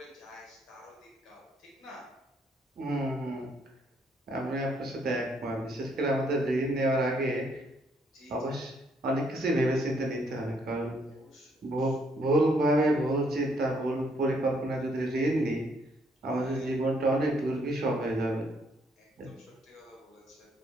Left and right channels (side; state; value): both; normal; correlation 0.70